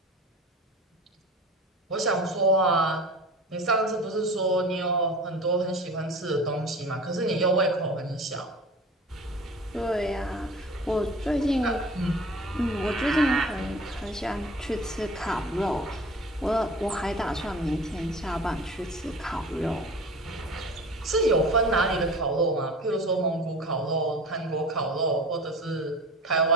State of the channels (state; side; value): normal; both; correlation 0.39